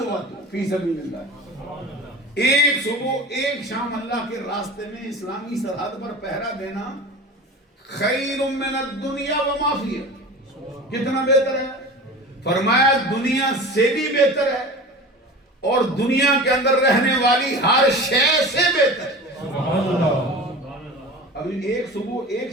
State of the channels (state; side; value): normal; both; correlation 0.34